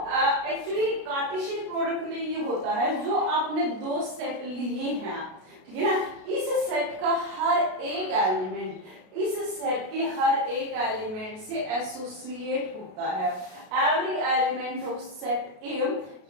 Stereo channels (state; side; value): late; left; 32 ms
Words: एक्चुअली कार्टेशियन प्रोडक्ट में ये होता है, जो आपने दो सेट लिए हैं, ठीक है ना, इस सेट का हर एक एलिमेंट इस सेट के हर एक एलिमेंट से एसोसिएट होता है। Every element of set A